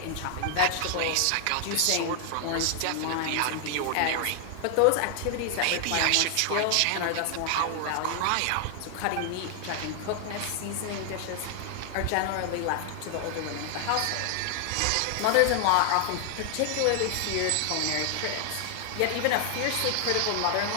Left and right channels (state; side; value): different; both; correlation 0.00